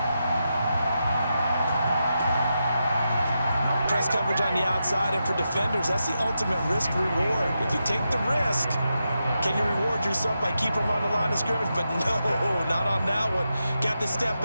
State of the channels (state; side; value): inverted; both; correlation -0.87